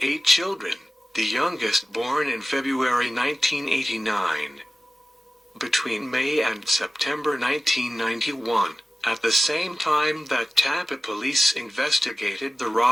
children, the youngest born in February 1989. Between May and September 1991, at the same time that Tampa police investigated the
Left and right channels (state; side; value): normal; both; correlation 0.94